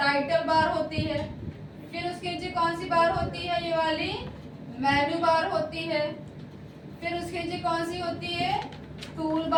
बार होती है। फिर उसके नीचे कौन सी बार होती है, ये वाली मेनू बार होती है। फिर उसके नीचे कौन सी होती है, टूल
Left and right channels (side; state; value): both; identical; correlation 1.00